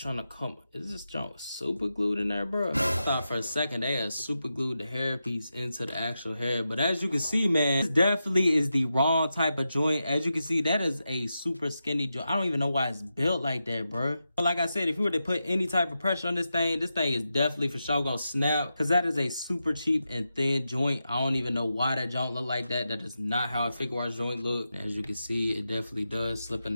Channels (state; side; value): inverted; both; correlation -0.89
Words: to come. Is this junk super glued in there, bro? I thought for a second they had super glued the hair piece into the actual hair. But as you can see, man, this definitely is the wrong type of joint. As you can see, that is a super skinny joint. I don't even know why it's built like that, bro. But like I said, if you were to put any type of pressure on this thing is definitely for sure gonna snap. Cause that is a super cheap and thin joint. I don't even know why that joint look like that. That is not how a figuarts joint look. As you can see, it definitely does slip in